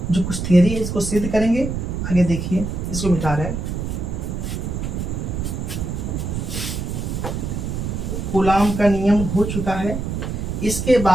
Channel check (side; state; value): right; noise; rumble, 3 dB below the sound